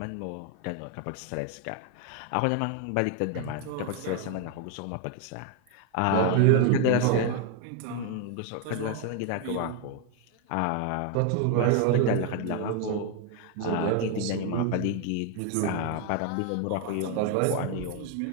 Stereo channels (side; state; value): both; different; correlation 0.01